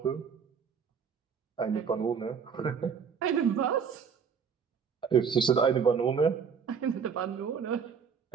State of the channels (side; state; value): left; quieter; 6.5 dB